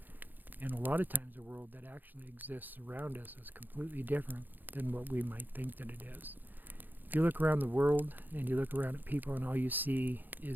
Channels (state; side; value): late; left; 0.088 ms